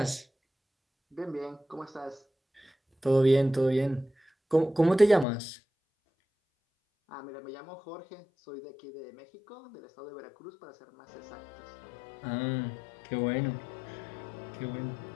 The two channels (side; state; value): right; drops out; at 5.2 s